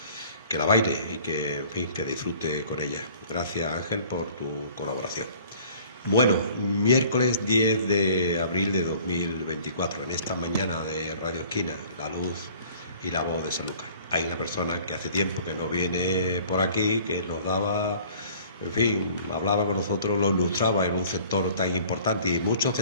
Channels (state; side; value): inverted; both; correlation -0.51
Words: que la baile y que, en fin, que disfrute con ella. Gracias, Ángel, por tu colaboración. Bueno, miércoles 10 de abril de 2024, en esta mañana de Radio Esquina, la luz y la voz de Sanlúcar. Hay una persona que hace tiempo que no viene por aquí, que nos daba, en fin, hablaba con nosotros, lo ilustraba en un sector tan importante y muchos